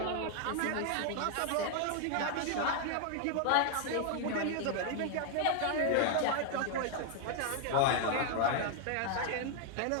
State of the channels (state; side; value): different; both; correlation 0.00